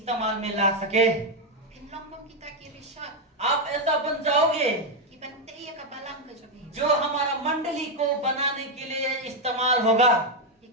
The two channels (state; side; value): normal; both; correlation 0.03